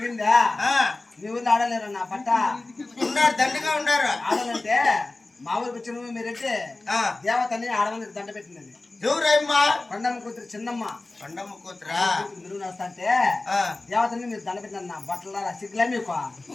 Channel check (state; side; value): quieter; right; 3.1 dB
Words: మీ ఊళ్ళో ఆడలేరు నా పట్ట ఉన్నారు, దండిగా ఉన్నారు. ఆడాలంటే మా ఊరికి వచ్చిన మీరైతే దేవతని ఆడవాళ్ళకి దండ పెట్టినది. ఎవరమ్మా? కొండమ్మ కూతురు చిన్నమ్మ. కొండమ్మ కూతురా? మీరు వస్తాంటే దేవతని మీరు దండ పెట్టిన నా బట్టల సిగ్గులే మీకు